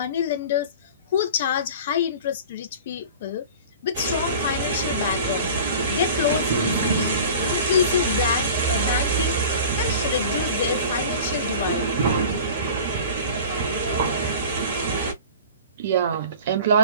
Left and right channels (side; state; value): both; inverted; correlation -0.39